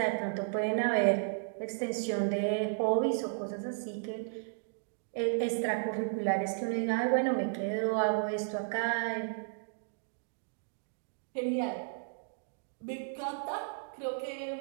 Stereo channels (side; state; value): left; silent; digital silence